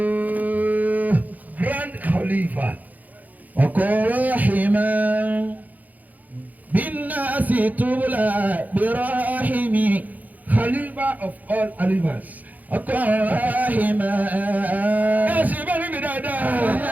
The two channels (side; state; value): left; late; 0.080 ms